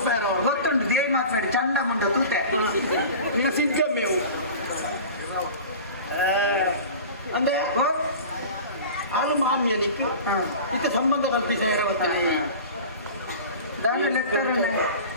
ಗೊತ್ತುಂಡು ದೇವಿ ಮಾತಾಡಿ ಚಂಡ ಮುಂಡ ತೂತೆ ನೀವು ಸಿದ್ಧ ಮೇವು ಅಂದೆ ಆಳು ಮಾಮಿಯನಿಕ್ಕೆ ಇದಕ್ಕೆ ಸಂಬಂಧ ಕಲ್ಪಿಸ ಇರವತ್ತನೆ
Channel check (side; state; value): both; inverted; correlation -0.37